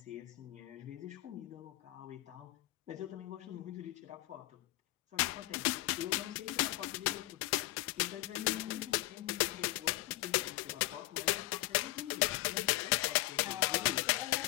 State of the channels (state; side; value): quieter; right; 17.5 dB